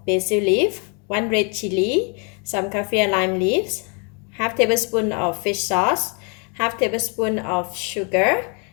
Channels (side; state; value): right; quieter; 36.0 dB